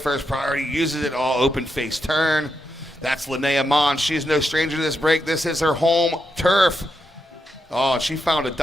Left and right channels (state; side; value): normal; both; correlation 0.84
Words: priority, uses it all, open face turn. That's Linnea Mons. She's no stranger to this break. This is her home turf. Oh, she found a